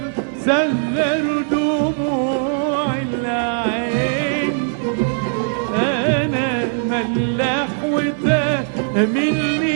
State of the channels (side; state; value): left; silent; 58 dB below the other